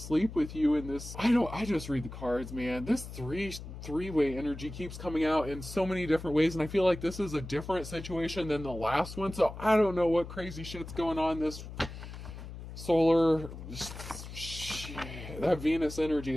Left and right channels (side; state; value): left; noise; hum, 11 dB below the sound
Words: with you in this. I just read the cards, man. This three-way energy keeps coming out in so many different ways, and I feel like this is a different situation than the last one. So I don't know what crazy shit's going on. This solar... That Venus energy